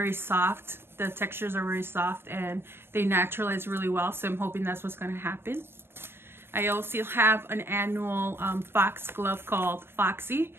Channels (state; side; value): late; left; 0.11 ms